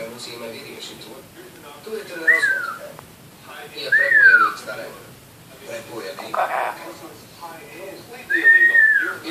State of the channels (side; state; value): both; identical; correlation 1.00